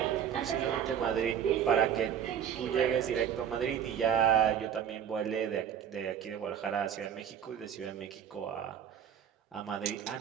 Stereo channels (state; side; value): quieter; left; 8.9 dB